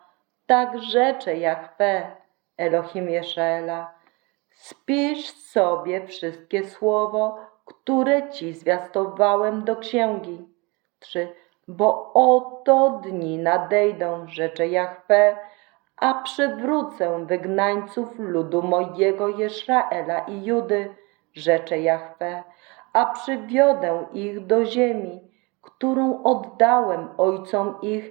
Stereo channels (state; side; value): quieter; left; 27.3 dB